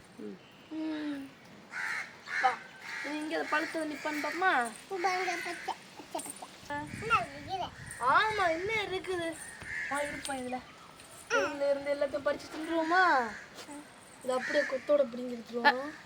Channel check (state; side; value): identical; both; correlation 1.00